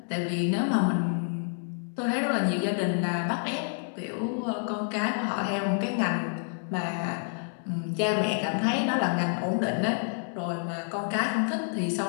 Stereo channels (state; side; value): silent; right; digital silence